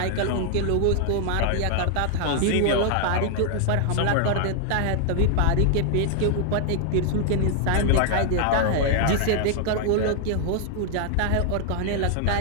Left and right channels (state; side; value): different; both; correlation 0.00